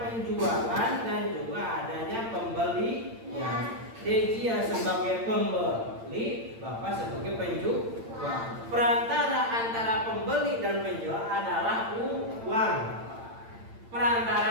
penjualan dan juga adanya pembeli. Ya, dia sebagai pembeli, Bapak sebagai penjual. Perantara antara pembeli dan penjual adalah uang.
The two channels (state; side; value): late; left; 8.8 ms